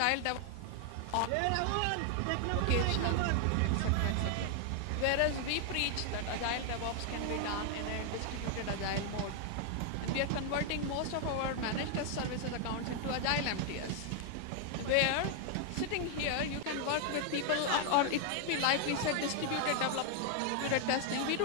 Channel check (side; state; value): both; different; correlation 0.00